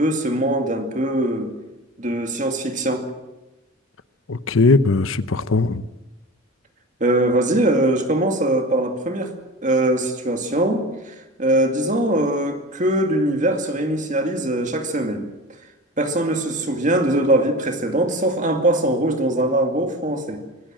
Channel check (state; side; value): normal; both; correlation 0.33